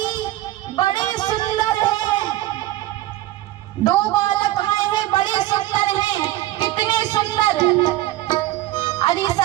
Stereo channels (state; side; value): quieter; left; 15.7 dB